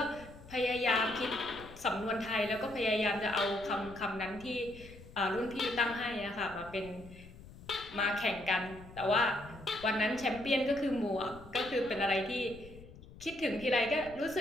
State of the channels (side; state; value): left; noise; rumble, 18 dB below the sound